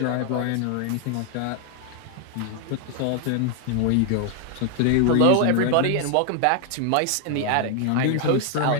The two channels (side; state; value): both; different; correlation 0.00